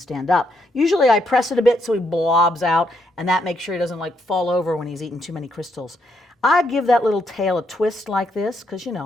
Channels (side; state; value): both; normal; correlation 0.76